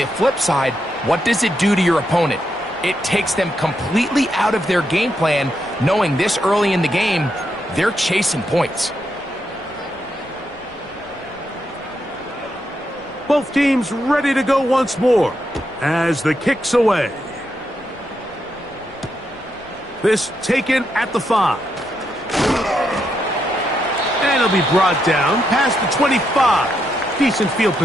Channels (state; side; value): noise; left; rumble, 25 dB below the sound